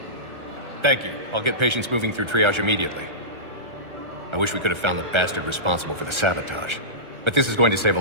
Thank you. I'll get patients moving through triage immediately. I wish we could have found the bastard responsible for the sabotage. But this is going to save a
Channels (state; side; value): late; left; 1.3 ms